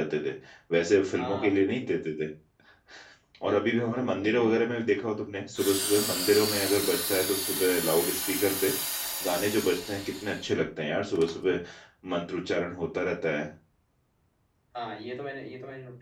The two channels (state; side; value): identical; both; correlation 1.00